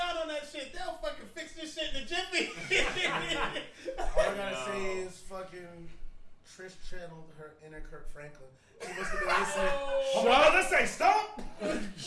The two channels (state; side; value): identical; both; correlation 1.00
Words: on that shit. They'll fucking fix this shit in a jiffy. All I gotta say is fucking Trish channeled her inner Kirk Franklin. She must have been listening. Oh, my brother say stop. Oh,